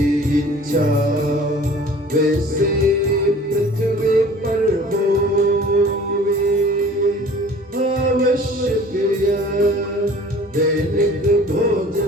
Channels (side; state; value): both; normal; correlation 0.47